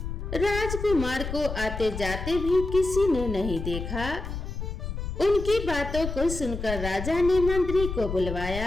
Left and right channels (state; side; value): noise; left; rumble, 6 dB below the sound